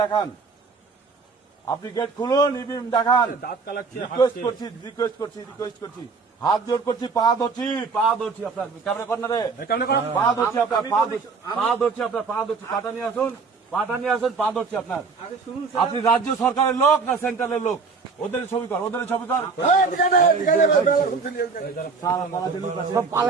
দেখান। আপনি গেট খুলুন, ইভিএম দেখান। রিকোয়েস্ট করছি, হাত জোর করছি, পা ধরছি আপনার ক্যামেরা কর্নারে, পা ধরছি আপনার, পা ধরছি, পাটা নিয়ে আসুন, পা ধরছি আপনার। আপনি রাজ্য সরকারের লোক না সেন্ট্রালের লোক? ওদের ছবি কর।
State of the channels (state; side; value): quieter; left; 4.8 dB